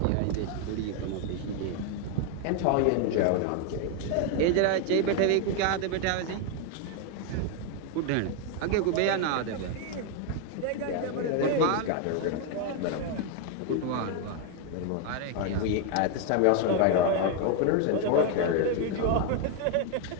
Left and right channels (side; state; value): both; different; correlation 0.01